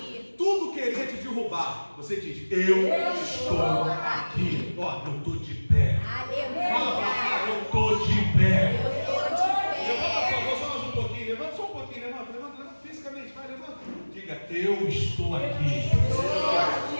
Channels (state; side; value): inverted; both; correlation -1.00